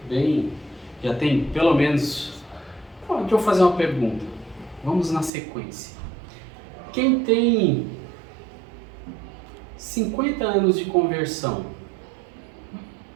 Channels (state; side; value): drops out; left; at 5.3 s